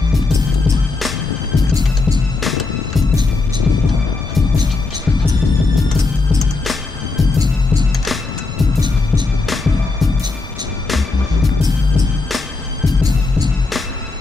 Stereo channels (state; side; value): quieter; right; 3.7 dB